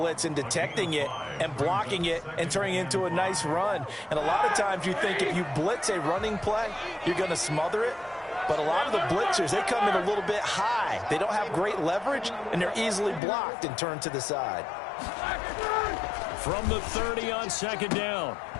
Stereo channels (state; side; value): drops out; right; at 13.2 s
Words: and detecting it and blocking it and turning it into a nice run. And a lot of times you think if you blitz a running play, you're going to smother it. But a lot of the blitzers, they come in a little bit high. They don't have great leverage, and they're easily blocked and turned to the side. From the 30 on second down,